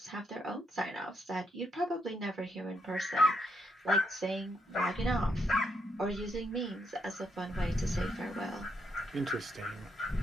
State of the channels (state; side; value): normal; both; correlation 0.77